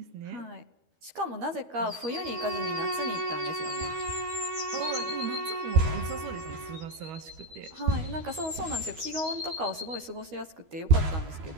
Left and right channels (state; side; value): late; left; 13 ms